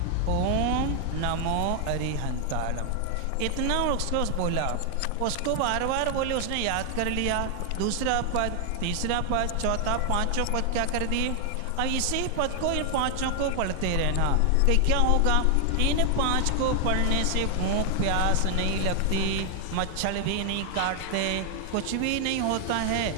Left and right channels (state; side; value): different; both; correlation 0.00